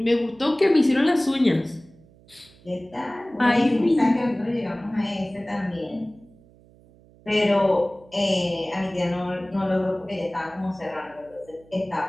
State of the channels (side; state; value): right; noise; hum, 27 dB below the sound